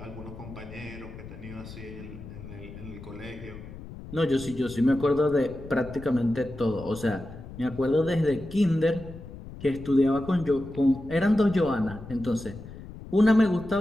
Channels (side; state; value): left; noise; rumble, 14 dB below the sound